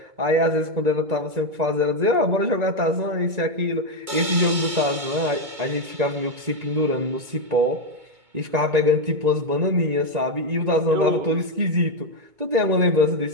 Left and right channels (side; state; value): left; late; 2.2 ms